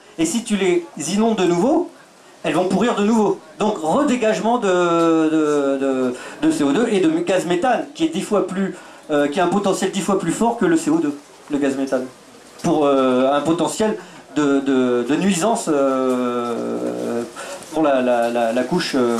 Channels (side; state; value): both; identical; correlation 1.00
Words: Et si tu les inondes de nouveau, elles vont pourrir de nouveau. Donc redégagement de CO2 et de gaz méthane, qui est 10 fois plus, qui a un potentiel 10 fois plus fort que le CO2, le gaz méthane, pour un potentiel de nuisance pour la couche